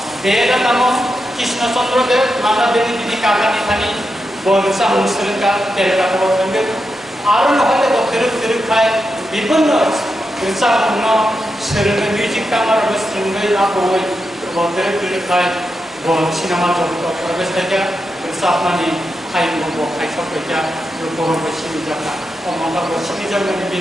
দেব নামক কৃষ্ণচন্দ্র দেব মান্নাদেবী তিনি কাকা নিখানি বরসা মুসলিমকা তেরকা বলতেন আরো নহলে গোরো খায় বিভিন্ন রসাপূর্ণ সেরনে মিউজিক কামার বস্ত্রঙ্গই আপই গোরো খায় সিনেমা জগত প্রবেশ থেকে রসাপনানি খাইবো খাইসকা বড় বসিনি জায়গা অমঙ্গল বসিনি জায়গানি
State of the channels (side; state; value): both; normal; correlation 0.87